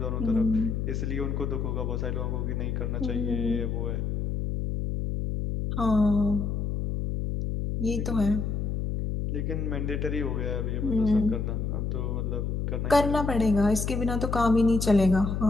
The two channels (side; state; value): left; noise; hum, 1 dB below the sound